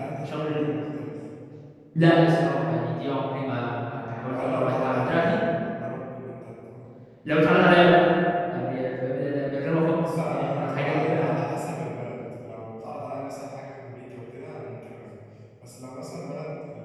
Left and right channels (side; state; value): both; identical; correlation 1.00